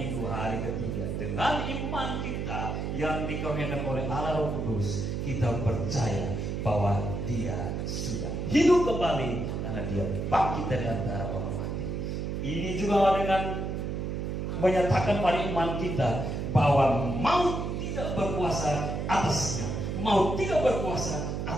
hari ketiga, dengan iman kita yang dikaruniakan oleh Allah Roh Kudus, kita percaya bahwa Dia sudah hidup kembali karena Dia bangkit dari antara orang mati. Ini juga dengan menyatakan pada iman kita bahwa maut tidak berkuasa atasnya, maut tidak berkuasa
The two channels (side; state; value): right; noise; hum, 3 dB below the sound